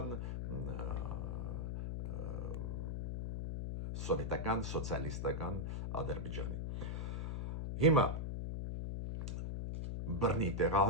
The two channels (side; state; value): left; noise; hum, 3 dB below the sound